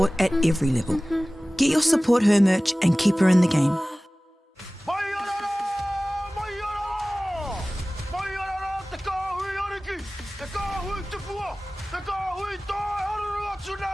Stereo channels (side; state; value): both; normal; correlation 0.98